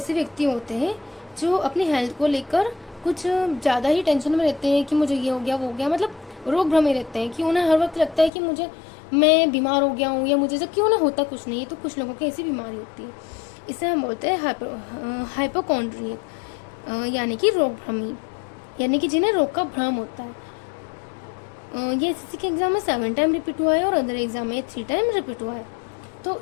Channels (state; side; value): drops out; right; at 8.3 s